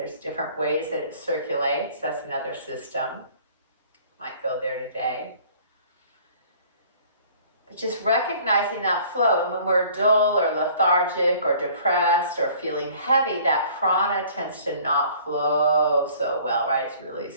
different ways that it circulates. That's another system. Might go there today. But just recognizing that flow. And when we're dull or lethargic or depressed or feeling heavy, that prana tends to not flow so well, right? It's really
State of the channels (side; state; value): both; inverted; correlation -0.53